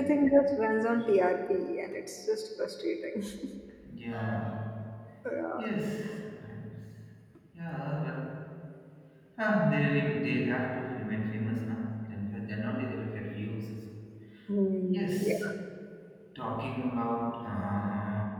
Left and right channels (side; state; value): both; identical; correlation 1.00